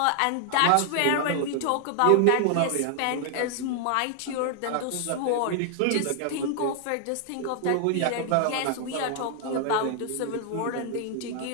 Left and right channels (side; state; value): both; different; correlation 0.00